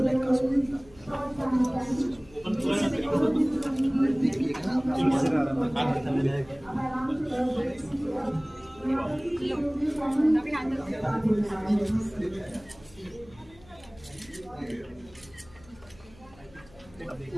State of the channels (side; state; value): left; noise; hum, 24 dB below the sound